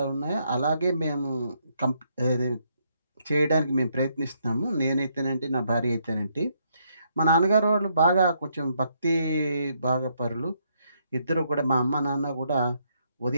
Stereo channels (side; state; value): both; inverted; correlation -0.74